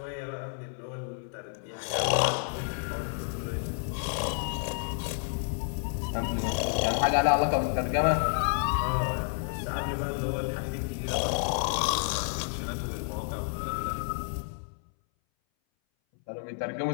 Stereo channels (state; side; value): silent; right; 58 dB below the other